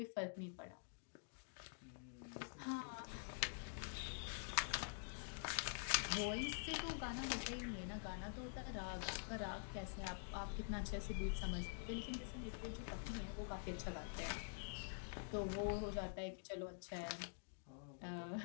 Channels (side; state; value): right; silent; digital silence